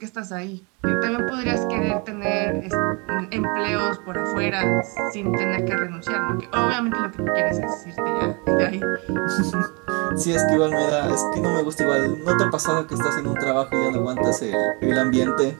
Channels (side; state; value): left; quieter; 30.6 dB